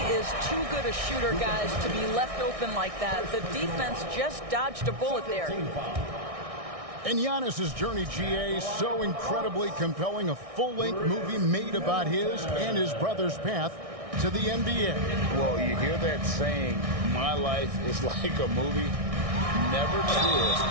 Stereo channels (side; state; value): left; late; 1.6 ms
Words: is too good a shooter, guys, to be left open like that. The defense just dodged a bullet there. And Giannis's journey, GA, so incredibly compelling. A full-length movie made about his and his brother's path to the NBA. Well, you hear that saying, my life is like a movie. Never truer